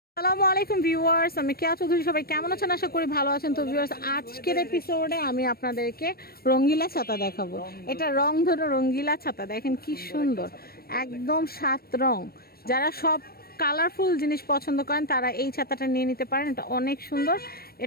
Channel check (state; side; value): late; right; 0.44 ms